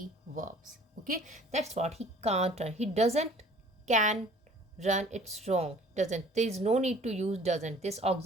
verbs. Okay, that's what he can't run. He doesn't can run, it's wrong. Doesn't, there is no need to use doesn't, this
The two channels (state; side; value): normal; both; correlation 0.51